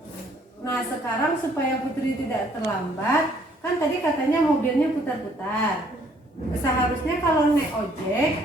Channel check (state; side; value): normal; both; correlation 0.63